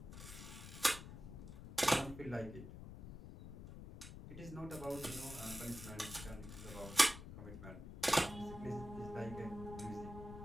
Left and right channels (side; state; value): left; noise; rumble, 11 dB below the sound